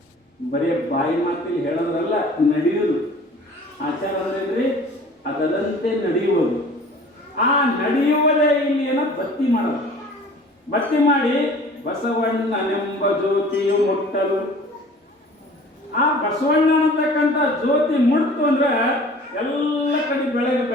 ಬರೀ ಬಾಯಿ ಮಾತಿಲ್ಲಿ ಹೇಳೋದ್ರಲ್ಲ, ನಡೆಯುವುದು. ಆಚಾರ ಅಂದ್ರೇನ್ರಿ? ಅದರಂತೆ ನಡೆಯುವುದು. ಆ ನಡೆಯುವುದೇ ಇಲ್ಲಿ ಏನೋ ಬತ್ತಿ ಮಾಡೋದು. ಬತ್ತಿ ಮಾಡಿ ಬಸವಣ್ಣನೆಂಬ ಜ್ಯೋತಿಯು ಮುಟ್ಟಲು, ಆ ಬಸವಣ್ಣ ಅನ್ನತಕ್ಕಂಥ ಜ್ಯೋತಿ ಮುಟ್ತು ಅಂದ್ರೆ ಎಲ್ಲ ಕಡೆ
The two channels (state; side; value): normal; both; correlation 0.47